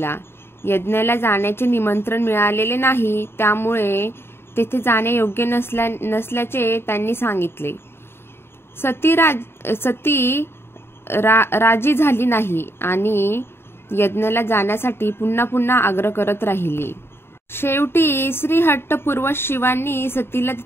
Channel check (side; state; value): right; late; 0.11 ms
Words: यज्ञाला जाण्याचे निमंत्रण मिळालेले नाही, त्यामुळे तेथे जाणे योग्य नसल्याचे त्यांनी सांगितले। सती राजी झाली नाही आणि यज्ञाला जाण्यासाठी पुन्हा आग्रह करत राहिली। शेवटी श्रीहट्टपूर्वक शिवांनी सतीला